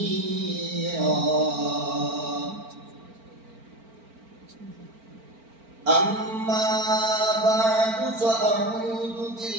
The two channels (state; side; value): late; left; 4.4 ms